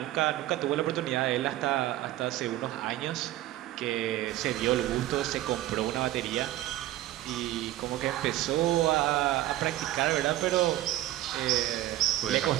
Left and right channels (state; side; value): quieter; left; 14.6 dB